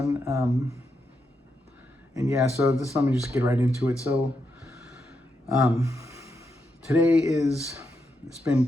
And yeah, so let me just get right into it. So today it's been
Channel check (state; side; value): normal; both; correlation 0.83